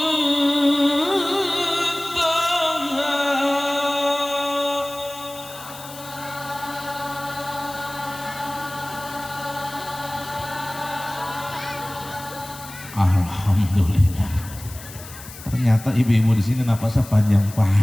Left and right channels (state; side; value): noise; left; hiss, 15 dB below the sound